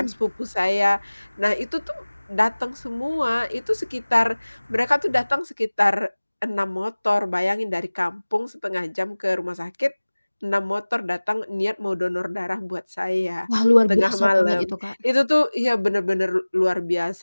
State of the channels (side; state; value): both; inverted; correlation -1.00